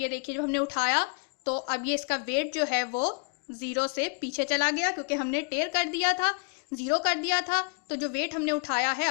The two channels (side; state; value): right; quieter; 35.4 dB